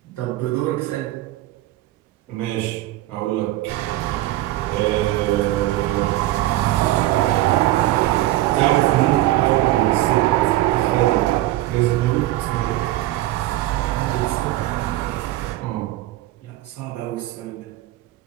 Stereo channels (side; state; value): left; quieter; 16.0 dB